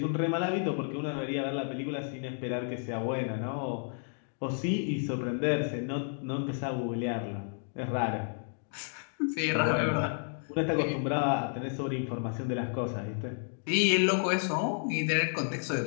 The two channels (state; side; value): silent; right; 57 dB below the other